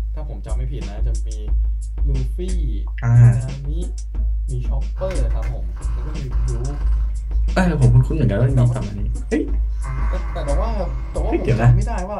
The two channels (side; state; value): both; identical; correlation 1.00